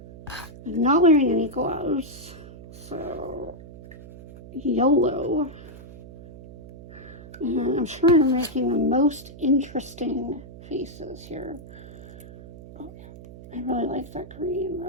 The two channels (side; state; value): right; noise; hum, 16 dB below the sound